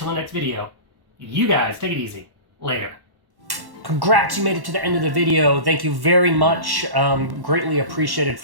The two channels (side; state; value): left; late; 1.1 ms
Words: the next video. You guys, take it easy. Later. Congrats, you made it to the end of the video. Thank you very much. Greatly appreciated